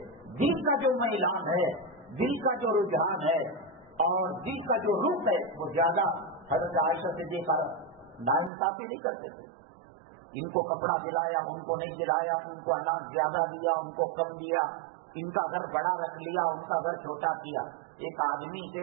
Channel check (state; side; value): drops out; left; at 8.5 s